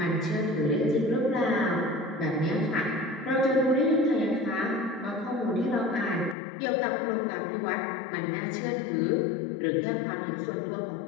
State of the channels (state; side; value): drops out; right; at 6.4 s